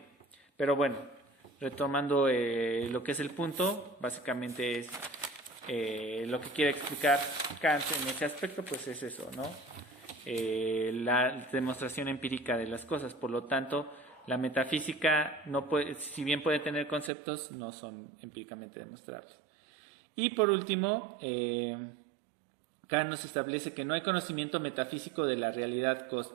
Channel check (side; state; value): left; drops out; at 17.1 s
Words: Pero bueno, retomando lo que es el punto, básicamente es lo que quiere explicar Kant en ese aspecto, pues es eso, ¿no? La demostración empírica de las cosas. Por lo tanto, la metafísica, no puede, si bien puede tener conceptos, no son empíricamente demostrables. Y por último, Kant nos establece que no hay conocimiento metafísico de la realidad